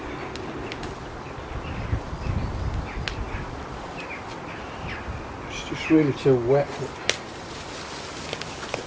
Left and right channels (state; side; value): identical; both; correlation 1.00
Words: It's just really too wet.